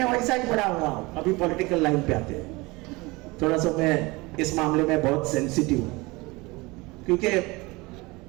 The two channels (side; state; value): left; quieter; 23.7 dB